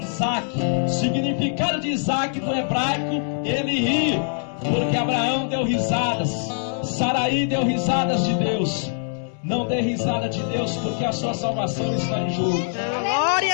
Significado de Isaac no hebraico: ele ri. Porque Abraão deu risadas, Saraí deu risadas de Deus. Não dê risada de Deus, porque a sua salvação está em jogo.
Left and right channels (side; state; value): right; silent; 63 dB below the other